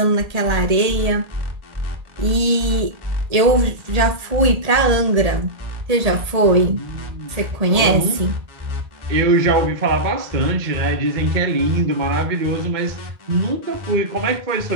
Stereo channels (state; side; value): late; left; 1.8 ms